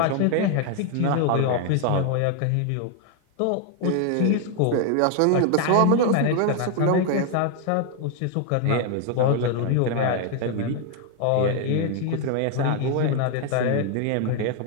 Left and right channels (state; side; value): different; both; correlation 0.01